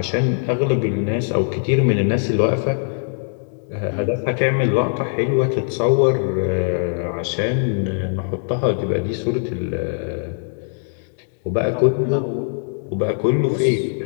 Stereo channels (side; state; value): right; silent; 62 dB below the other